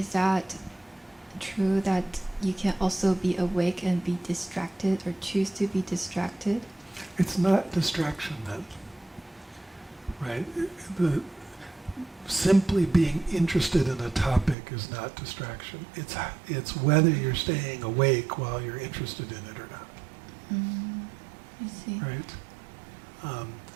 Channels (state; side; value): drops out; left; at 14.6 s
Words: that true that you can also be awake and be distracted or choose to be distracted? It's not distraction then, right? Simply being interested in a topic is not distraction. It's whether you're staying awake while you're interested in it or not. I see. Right?